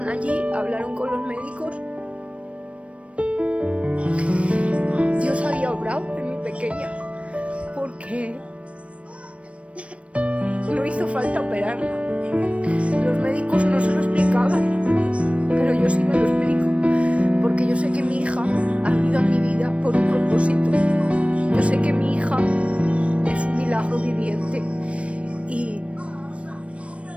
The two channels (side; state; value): left; late; 0.062 ms